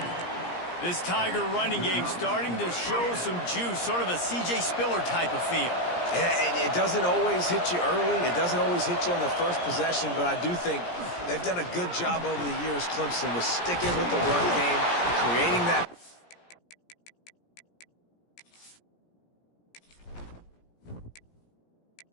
This Tiger running game starting to show some juice, sort of a C.J. Spiller type of feel. Yeah, and it doesn't always hit you early. It doesn't always hit you on the first possession, but I do think they've done a good job over the years, Clemson, with sticking with the run game, creating that.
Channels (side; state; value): right; late; 17 ms